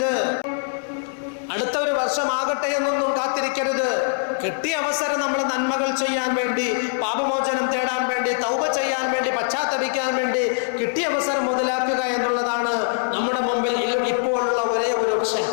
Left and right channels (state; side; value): silent; right; 64 dB below the other